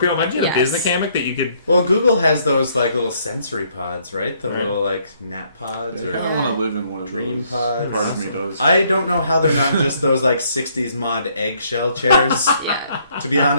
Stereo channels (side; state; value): both; inverted; correlation -0.67